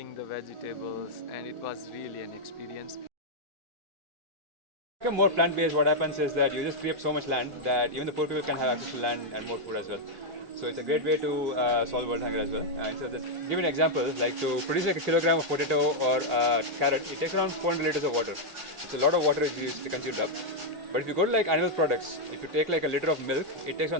the vegetables, and it was really an experience. Become more plant-based, what happens is that you just free up so much land that even the poor people can have access to land and more food as well. So it's a great way to solve world hunger as well. And so just give you an example, like to produce like a kilogram of potato or carrot, it takes around 400 liters of water. So a lot of water is used to consumed up. But if you go to like animal products, if you take like a liter of milk, it takes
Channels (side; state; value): left; late; 1.6 ms